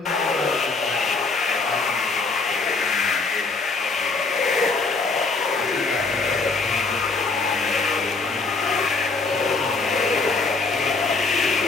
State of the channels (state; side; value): quieter; right; 4.0 dB